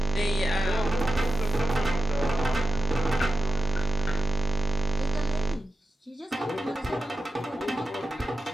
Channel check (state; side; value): normal; both; correlation 0.93